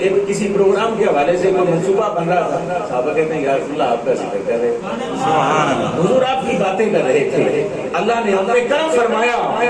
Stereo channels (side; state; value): both; identical; correlation 1.00